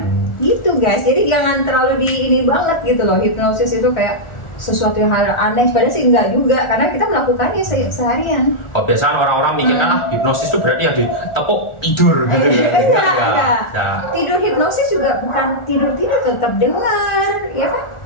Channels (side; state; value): right; late; 1.4 ms